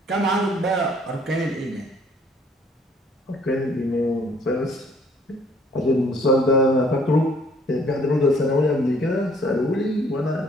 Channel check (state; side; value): normal; both; correlation 0.60